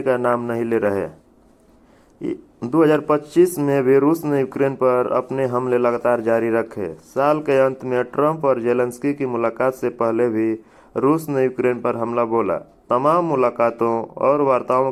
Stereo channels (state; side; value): identical; both; correlation 1.00